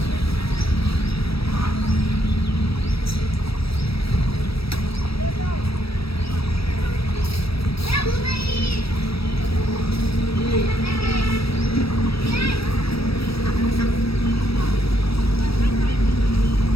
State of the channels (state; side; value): late; right; 0.76 ms